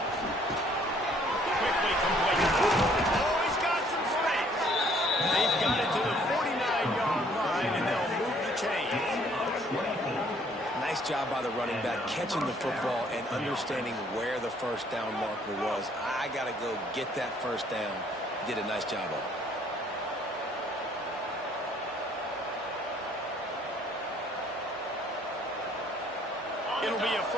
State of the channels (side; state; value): both; normal; correlation 0.61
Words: Quickly complete. Oh, he's got some space. They've got it to the 49-yard line, and they'll move the chains. Nice job by the running back, catching the football and understanding where the first down marker was. I got to go get that first down. He did a nice job of it. It'll be a